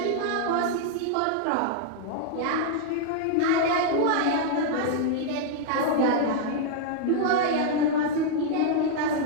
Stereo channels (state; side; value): different; both; correlation -0.01